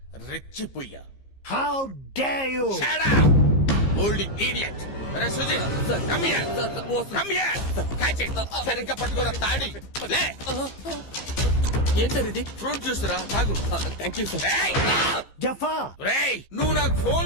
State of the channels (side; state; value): right; late; 15 ms